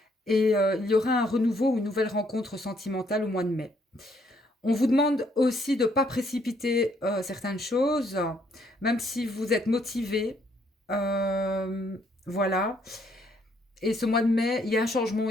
et il y aura un renouveau ou une nouvelle rencontre sentimentale au mois de mai. On vous demande aussi de ne pas précipiter certaines choses, même si vous êtes motivé. Voilà. Et ce mois de mai, il y a un changement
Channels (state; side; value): normal; both; correlation 0.69